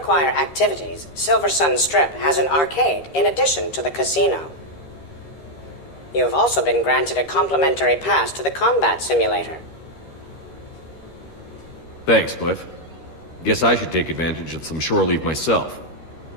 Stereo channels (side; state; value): right; late; 13 ms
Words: activities, Silver Sun Strip has an arcade in addition to the casino. You have also been granted a complimentary pass to the combat simulator. Thanks, Cliff. Guess I should take advantage of some shore leave myself.